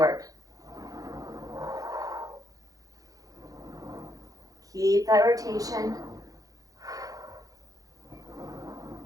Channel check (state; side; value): late; left; 0.17 ms